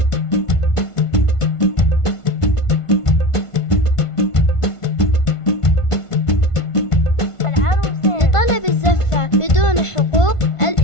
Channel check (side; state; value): right; late; 1.5 ms